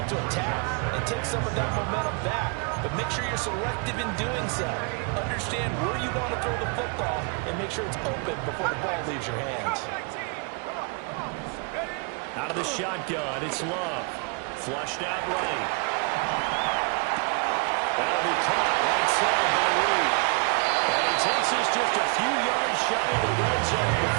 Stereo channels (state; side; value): quieter; left; 34.7 dB